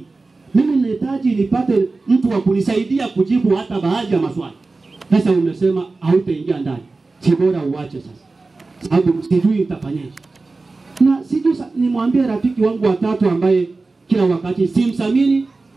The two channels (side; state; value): left; quieter; 3.6 dB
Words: Mimi ninahitaji nipate mtu wa kunisaidia kujibu hata baadhi ya maswali. Sasa umesema hautaingia ndani. Si bora uache sasa, sababu sijui nitafanyaje. Na sijui nimwambie rafiki wangu wa tatu ambaye kila wakati simsamini,